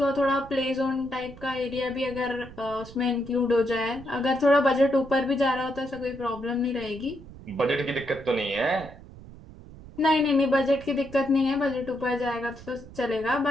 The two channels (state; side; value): noise; right; rumble, 17 dB below the sound